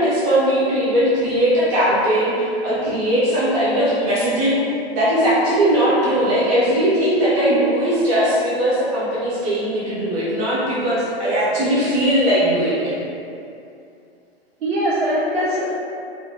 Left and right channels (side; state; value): both; normal; correlation 0.28